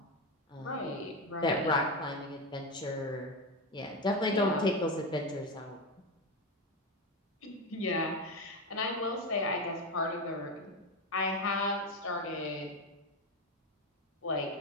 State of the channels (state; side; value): normal; both; correlation 0.15